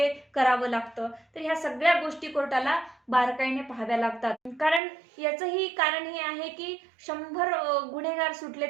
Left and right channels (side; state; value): left; drops out; at 4.8 s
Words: करावं लागतं. तर ह्या सगळ्या गोष्टी कोर्टाला बारकाईने पाहाव्या लागतात. कारण याचंही कारण हे आहे की 100 गुन्हेगार सुटले